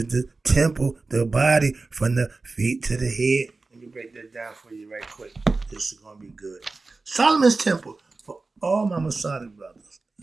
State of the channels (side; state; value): left; quieter; 3.7 dB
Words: the temple, the body from the feet to the head. Let me break that down for you right quick. This is gonna be good. Solomon's temple for all my Masonic brothers.